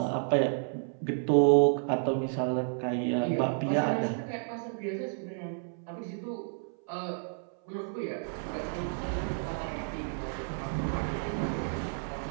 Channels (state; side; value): silent; left; 56 dB below the other